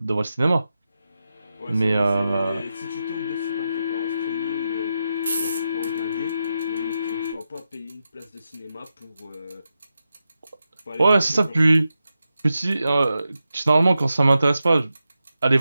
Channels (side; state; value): both; inverted; correlation -0.89